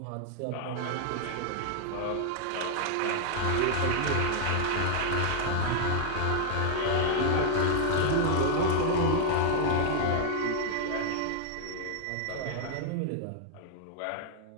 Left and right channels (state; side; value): different; both; correlation 0.00